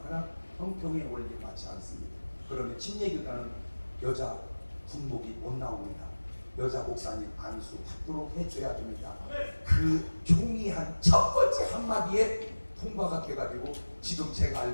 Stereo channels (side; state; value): both; inverted; correlation -1.00